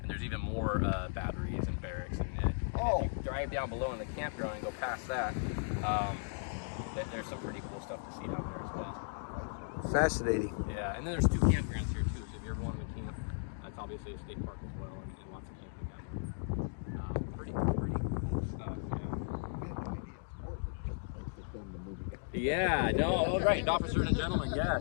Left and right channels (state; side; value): silent; right; digital silence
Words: there's even more batteries and barracks. And if you drive down below in the campground and go past that, there's some pretty cool stuff to see down there as well. Fascinating. Yeah, and then there's 2 campgrounds here too. So if you ever want to camp, that's obviously a state park as well, and lots of camping down there. Pretty cool. stuff. Yeah, no, oh, right, Officer and Gentleman,